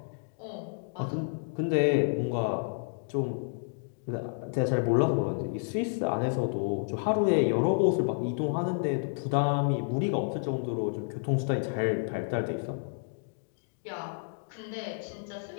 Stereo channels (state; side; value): silent; right; digital silence